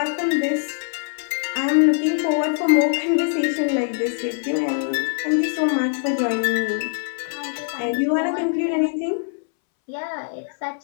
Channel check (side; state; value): right; silent; 64 dB below the other